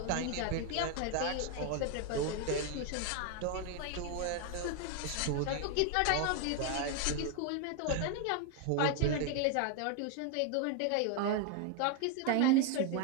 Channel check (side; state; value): both; different; correlation 0.01